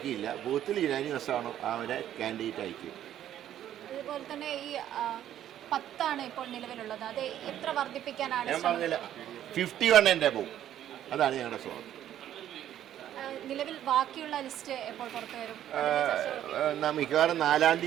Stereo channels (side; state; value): left; quieter; 11.4 dB